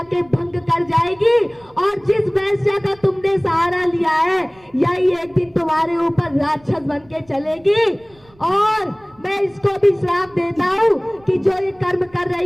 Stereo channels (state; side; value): noise; right; rumble, 29 dB below the sound